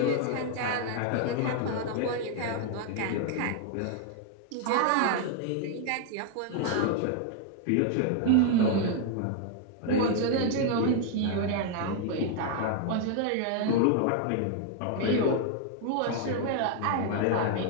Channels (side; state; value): both; different; correlation 0.00